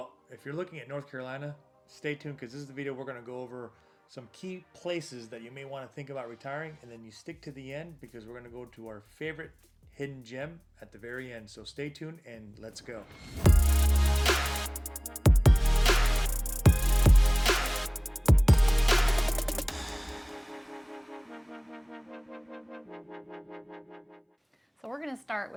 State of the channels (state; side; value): identical; both; correlation 1.00